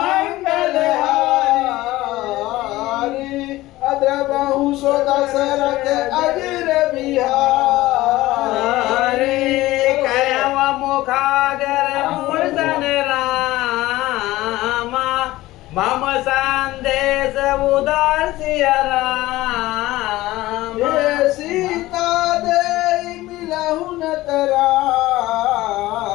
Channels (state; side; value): quieter; right; 17.5 dB